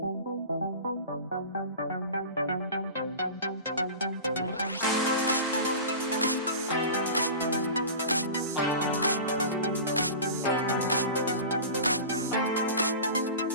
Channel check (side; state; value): both; inverted; correlation -0.34